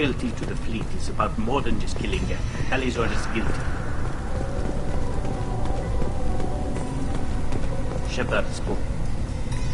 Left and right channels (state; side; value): identical; both; correlation 1.00